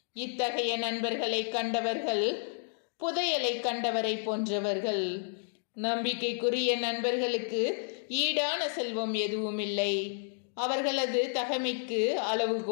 இத்தகைய நண்பர்களை கண்டவர்கள் புதையலை கண்டவரை போன்றவர்கள். நம்பிக்கைக்குரிய நண்பர்களுக்கு ஈடான செல்வம் எதுவும் இல்லை. அவர்களது தகைமைக்கு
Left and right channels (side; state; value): right; silent; digital silence